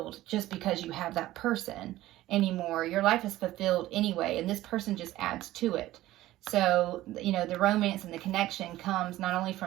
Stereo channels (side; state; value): left; quieter; 15.6 dB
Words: just because you have that person anymore. Your life is fulfilled anyway, and this person just adds to it. So, the romance and the connection comes not only